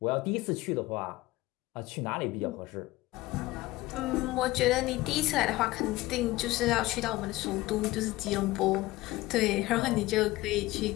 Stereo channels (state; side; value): quieter; right; 18.5 dB